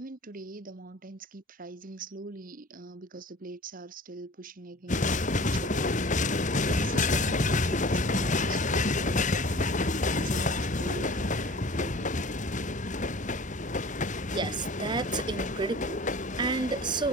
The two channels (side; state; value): both; normal; correlation 0.43